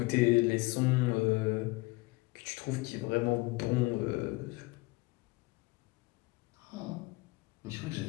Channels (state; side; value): quieter; right; 23.2 dB